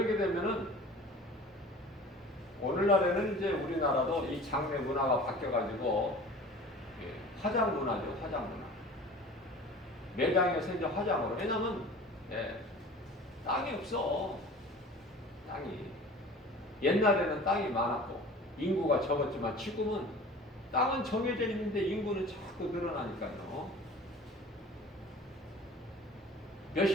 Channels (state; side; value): normal; both; correlation 0.42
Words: 되면은 오늘날에는 이제 우리나라도 이 장례 문화가 바뀌어가지고 화장 문화죠. 화장 문화. 매장에서 이제 화장으로. 왜냐면 땅이 없어. 땅이. 옛날에는 땅이 많았고 인구가 적었지만 지금은 땅은 정해져 있는데 인구는 자꾸 늘어나니까요.